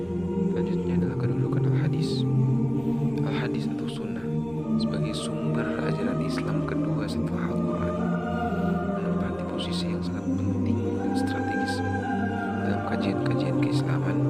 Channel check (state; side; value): noise; left; rumble, 24 dB below the sound